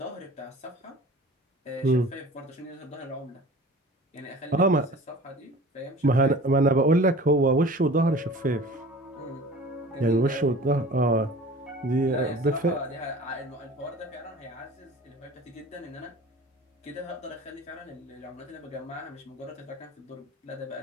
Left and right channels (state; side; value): normal; both; correlation 0.42